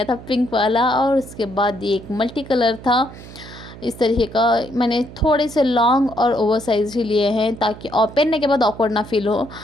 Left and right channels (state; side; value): noise; right; hum, 16 dB below the sound